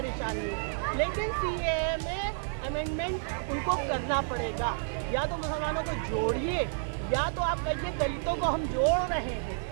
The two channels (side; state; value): left; silent; digital silence